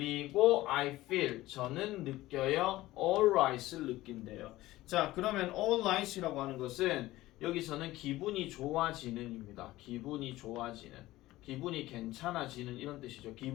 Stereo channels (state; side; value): quieter; right; 17.1 dB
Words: I feel 저는 느껴요. alright을 느낀대요. 자, 그러면 alright이라고 하는 것은 여기서는 기분이 좋아지는입니다. 기분이 좋아지는. 기분이 괜찮아지는 이런 뜻이죠.